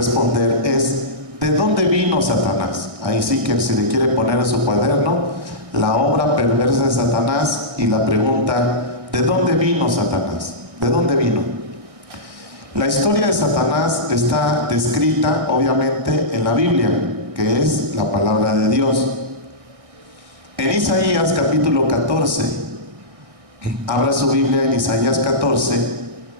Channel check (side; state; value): left; late; 1.6 ms